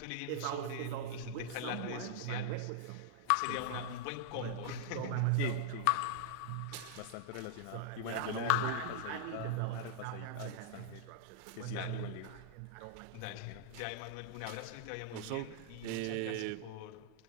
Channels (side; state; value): both; different; correlation -0.01